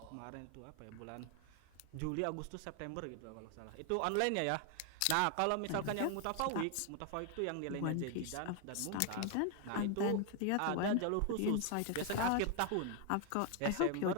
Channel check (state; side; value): different; both; correlation 0.01